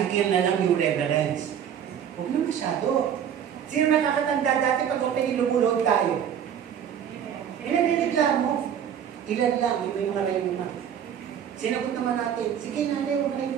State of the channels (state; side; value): quieter; left; 8.9 dB